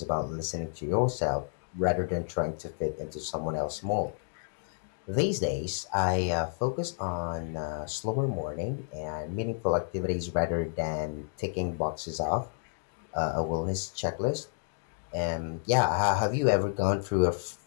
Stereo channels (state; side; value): silent; right; digital silence